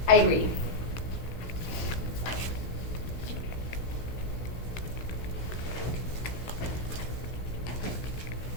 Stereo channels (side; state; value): right; late; 16 ms